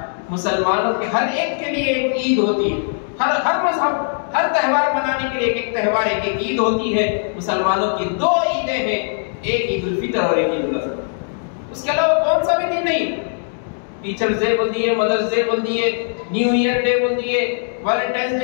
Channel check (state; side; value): silent; right; 66 dB below the other